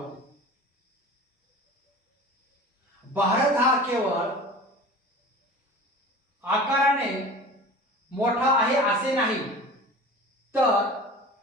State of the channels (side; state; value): both; normal; correlation 0.38